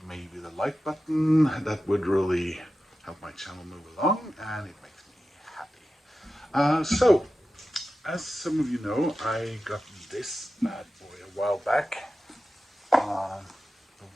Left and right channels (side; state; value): both; normal; correlation 0.93